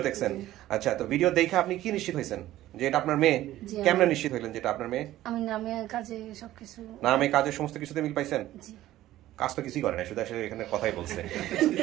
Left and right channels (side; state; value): left; quieter; 14.6 dB